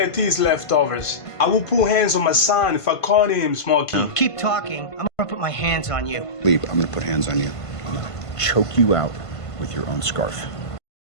his leftovers. I will put hands on my son if I caught him smoking. Keep talking. I'm gonna put my hands on you. Leave. I'm gonna put hands on you. I'm gonna choke you out with your own scarf.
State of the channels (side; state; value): right; late; 1.5 ms